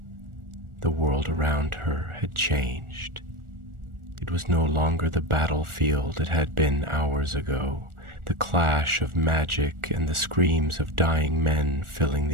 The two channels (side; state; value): left; late; 1.4 ms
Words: The world around her had changed. It was no longer the battlefield it had been hours ago, the clash of magic and the screams of dying men filling